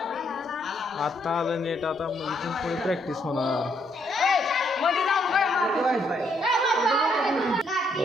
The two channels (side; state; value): both; normal; correlation 0.72